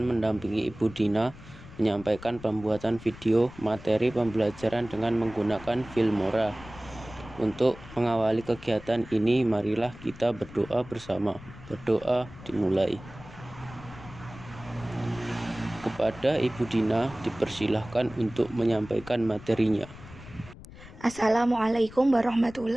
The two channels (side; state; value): left; noise; rumble, 17 dB below the sound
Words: mendampingi Ibu Dina menyampaikan pembuatan video materi pembelajaran dengan menggunakan Filmora. Untuk mengawali kegiatan ini, marilah kita berdoa bersama. Berdoa dimulai. Kepada Ibu Dina dipersilahkan untuk menyampaikan materinya. Assalamualaikum